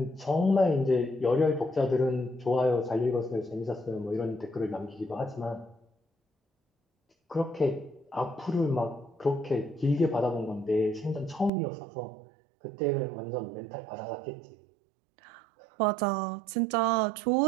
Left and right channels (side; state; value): left; drops out; at 11.5 s